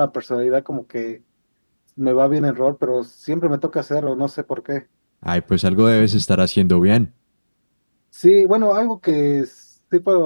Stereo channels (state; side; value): inverted; both; correlation -1.00